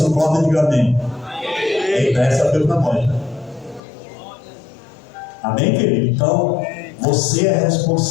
concorda, diga amém. Essa foi para nós. Amém, querido? Então, você é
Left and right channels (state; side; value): drops out; right; at 3.8 s